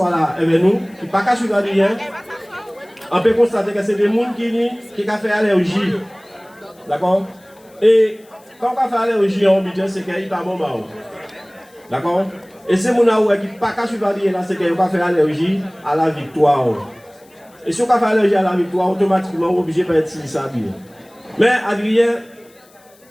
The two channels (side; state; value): left; noise; hiss, 30 dB below the sound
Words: là avec nous, qui ne parlent pas sur rien, on peut constater que c'est des gens qui ont fait allergie. D'accord? Et quand on fait allergie en budget, c'est qu'il n'y a pas bon. D'accord? Et c'est mon aoué qui n'a pas suivre là, c'est qu'il va faire allergie à la victoire. Et si on fait allergie à la victoire, automatiquement, on est obligé de être ça bien. Mais Adrien,